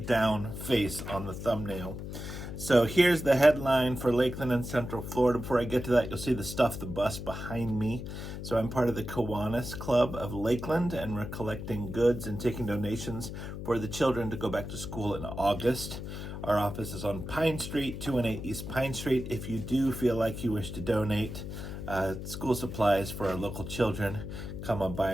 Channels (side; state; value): left; noise; hum, 8 dB below the sound